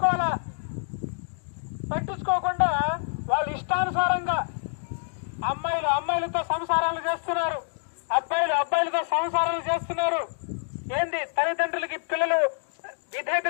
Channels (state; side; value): silent; right; 60 dB below the other